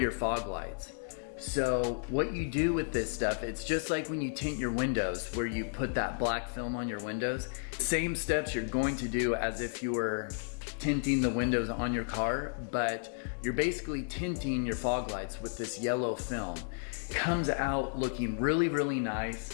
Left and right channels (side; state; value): right; silent; 56 dB below the other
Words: fog lights. So what you do with this stuff, it's just like when you tint your windows, where you put that black film on your windows. Same steps you're going to do as if you were tinting the windows on your car, but you're basically tinting your fog lights with this yellow film. It comes out looking really, really